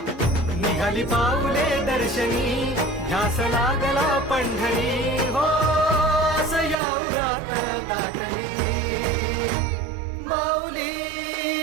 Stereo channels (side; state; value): left; drops out; at 6.8 s